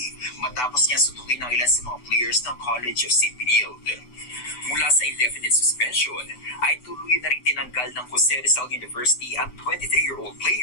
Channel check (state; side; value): late; right; 8.0 ms